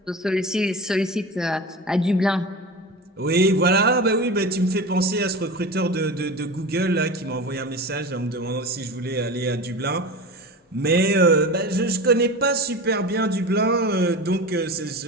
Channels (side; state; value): both; normal; correlation 0.30